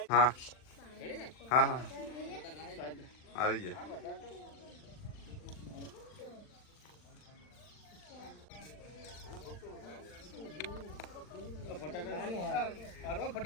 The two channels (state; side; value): late; right; 39 ms